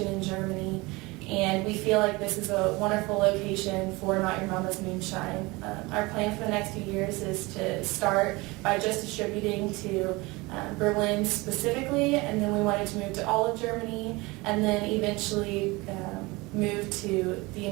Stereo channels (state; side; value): quieter; left; 23.5 dB